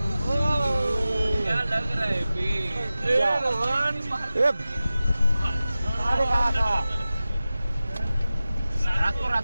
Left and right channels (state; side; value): inverted; both; correlation -0.95